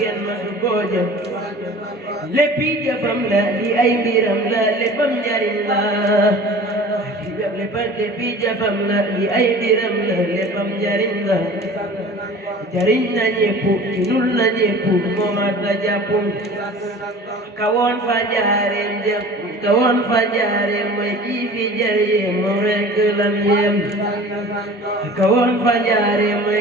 masu koo jëf léppi jëfam la li ay mbiram la léppam njariñ la léppi jëfam la li ay mbiram la léppam njariñ la jariñ na ñépp tinul na ñépp moo mat la jàpp kawoon fa njaareem jëf kawoon fa njaareem mooy kii fi jariñee moom rekk lam yem kawoon fa njaareem mooy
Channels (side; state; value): both; normal; correlation 0.42